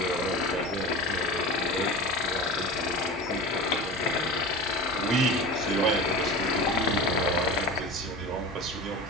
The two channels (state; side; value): normal; both; correlation 0.31